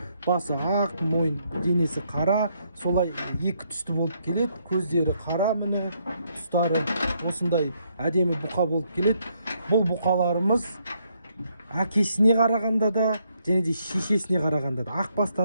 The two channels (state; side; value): inverted; both; correlation -0.74